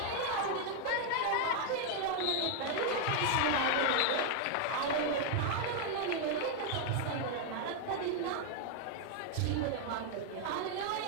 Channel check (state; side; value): different; both; correlation 0.00